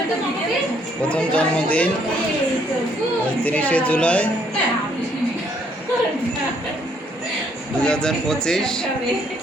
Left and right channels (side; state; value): both; normal; correlation 0.68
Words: প্রথম জন্মদিন 30শে জুলাই 2025।